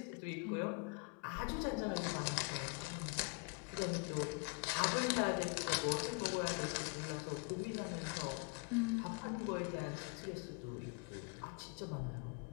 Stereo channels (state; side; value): quieter; right; 32.9 dB